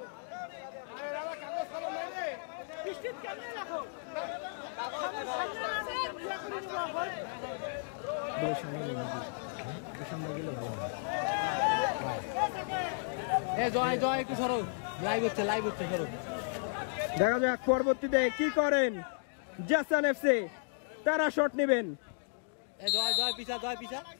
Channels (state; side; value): silent; right; digital silence